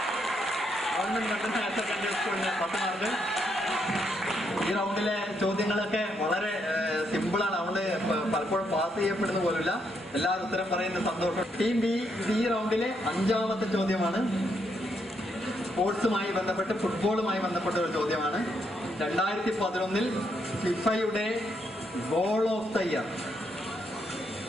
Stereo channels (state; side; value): normal; both; correlation 0.77